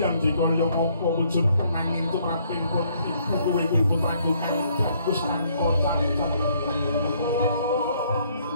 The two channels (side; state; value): both; inverted; correlation -0.66